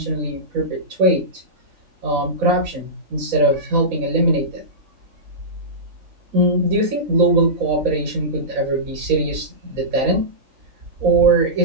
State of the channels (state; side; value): late; left; 4.0 ms